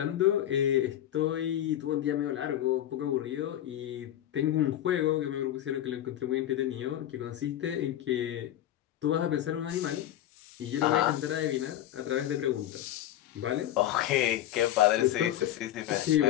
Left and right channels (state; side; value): quieter; right; 12.4 dB